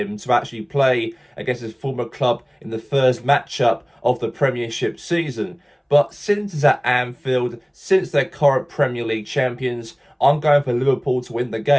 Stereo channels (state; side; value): identical; both; correlation 1.00